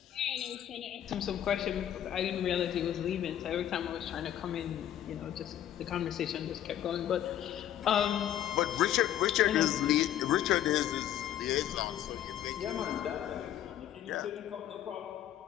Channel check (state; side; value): quieter; right; 11.2 dB